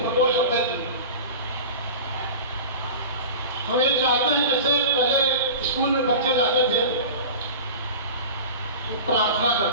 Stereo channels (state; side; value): inverted; both; correlation -0.34